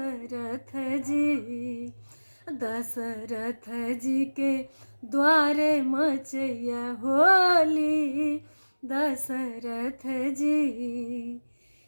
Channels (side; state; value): both; inverted; correlation -1.00